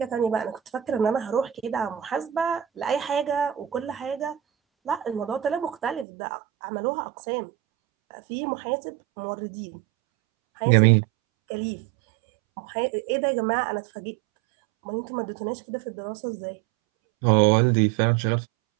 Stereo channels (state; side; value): drops out; left; at 6.1 s